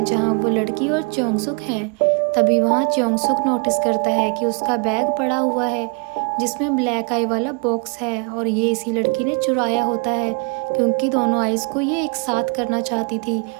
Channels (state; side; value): quieter; left; 35.2 dB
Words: जहां वो लड़की और चोंगसुक हैं। तभी वहां चोंगसुक नोटिस करता है कि उसका बैग पड़ा हुआ है जिसमें ब्लैक आई वाला बॉक्स है और ये इसी लड़की ने चुराया होता है क्योंकि दोनों आइज को ये एक साथ करना चाहती थी